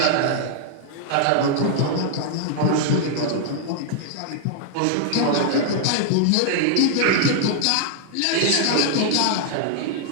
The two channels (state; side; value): different; both; correlation 0.00